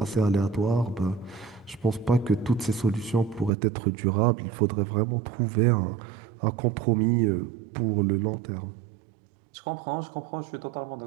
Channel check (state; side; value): drops out; left; at 3.5 s